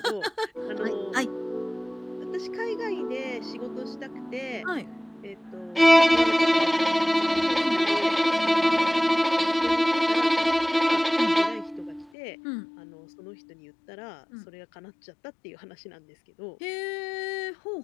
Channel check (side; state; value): right; drops out; at 12.1 s